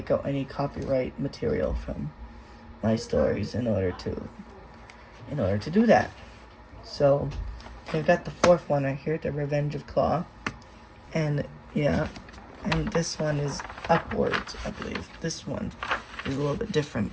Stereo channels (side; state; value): both; identical; correlation 1.00